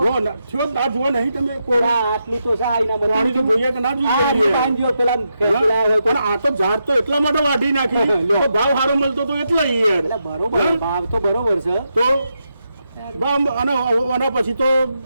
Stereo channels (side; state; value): both; inverted; correlation -0.84